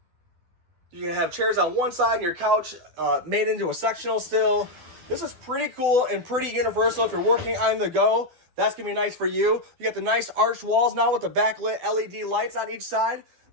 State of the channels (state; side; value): late; left; 12 ms